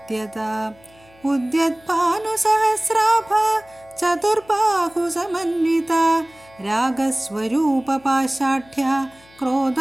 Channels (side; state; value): left; noise; hum, 28 dB below the sound